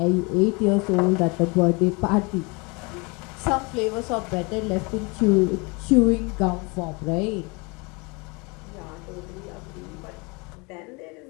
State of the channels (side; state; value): right; quieter; 28.7 dB